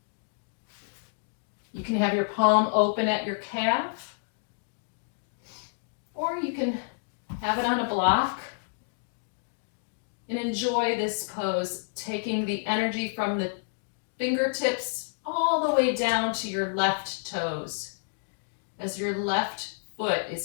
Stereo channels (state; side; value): silent; right; digital silence